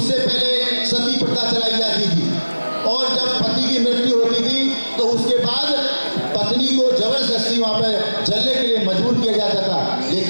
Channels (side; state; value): both; inverted; correlation -1.00